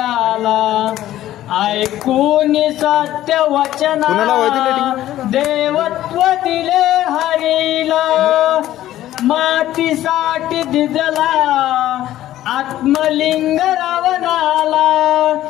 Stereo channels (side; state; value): right; quieter; 13.6 dB